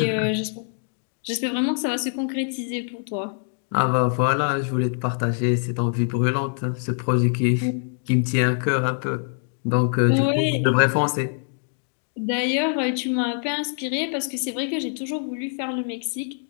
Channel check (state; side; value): silent; right; 62 dB below the other